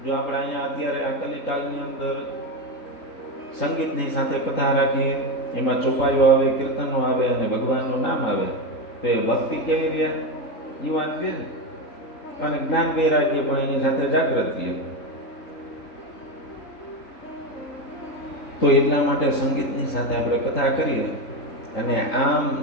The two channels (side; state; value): right; late; 3.1 ms